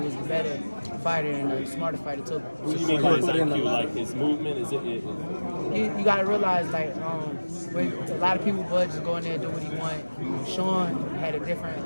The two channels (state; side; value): inverted; both; correlation -1.00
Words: the better fighter and the smarter fighter too. What do you mean by his IQ? Like his movement? Is it? You gotta realize, like, when a lot of people, Bud just go in there and do what he want. Sean had a